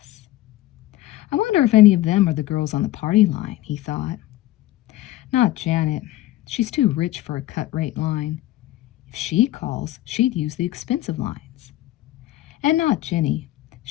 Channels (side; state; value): right; quieter; 15.5 dB